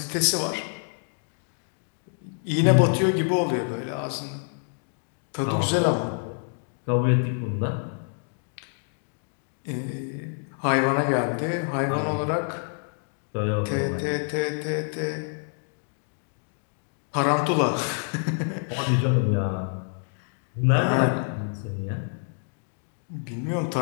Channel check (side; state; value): right; silent; 56 dB below the other